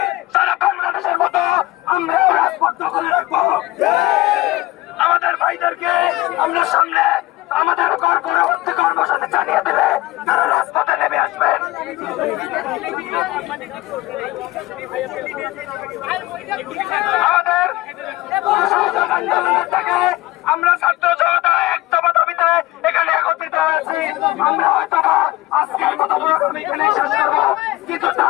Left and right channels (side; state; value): right; quieter; 18.2 dB